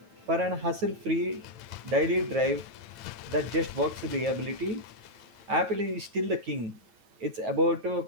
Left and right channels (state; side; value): late; left; 9.2 ms